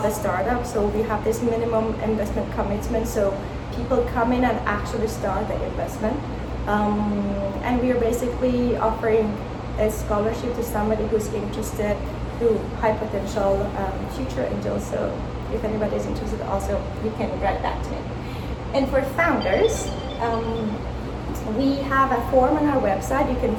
a startup. So we have this minimum investment commitment, so people come in and actually start the investment. And we are basically offering a scholarship to somebody who's interested, who high potential future angels. So if anybody is interested, also you can write that to me. And for founders, we have a form on our website. You can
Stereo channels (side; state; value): both; identical; correlation 1.00